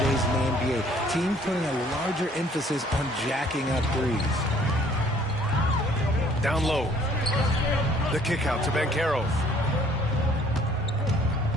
in the NBA. Teams putting a larger emphasis on jacking up threes. Down low. The kick out to Banchero.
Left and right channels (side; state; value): both; normal; correlation 0.58